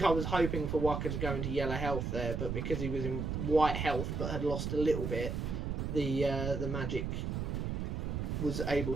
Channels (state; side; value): noise; right; rumble, 2 dB below the sound